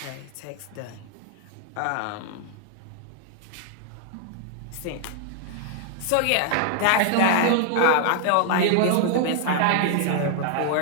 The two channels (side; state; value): both; different; correlation 0.00